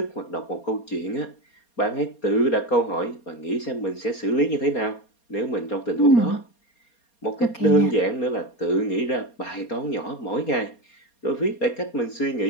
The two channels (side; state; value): right; late; 4.3 ms